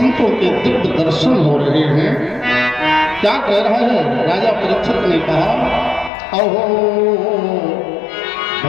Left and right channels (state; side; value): drops out; right; at 6.1 s